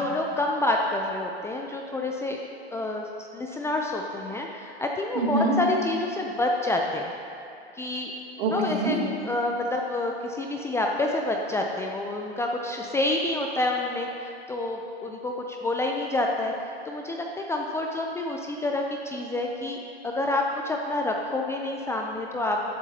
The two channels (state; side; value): normal; both; correlation 0.42